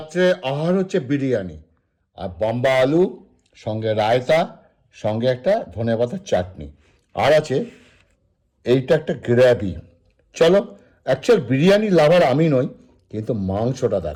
আহার হচ্ছে বিরিয়ানি আর বাম্বা আলু, সঙ্গে রায়তা, সঙ্গে একটা ধনেপাতার চাটনি, আর আছে এইটা একটা গ্রেভি। চলো, অ্যাকচুয়াল বিরিয়ানি লাভার আমি নই, কিন্তু মাংসটা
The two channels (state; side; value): identical; both; correlation 1.00